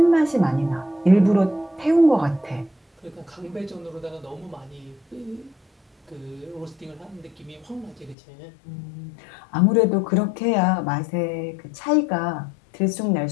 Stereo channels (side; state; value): right; drops out; at 8.2 s